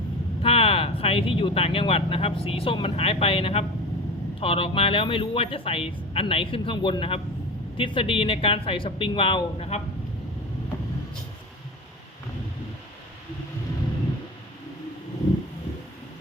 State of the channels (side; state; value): both; normal; correlation 0.30